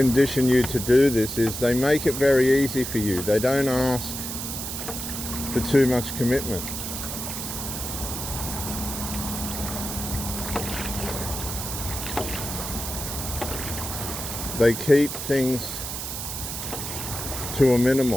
you to do this is they make it very easy for you. They don't ask for too much commitment. They keep things to a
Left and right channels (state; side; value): noise; right; hiss, 6 dB below the sound